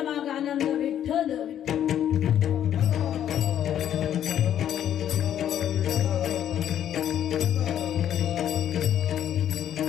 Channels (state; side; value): quieter; right; 10.4 dB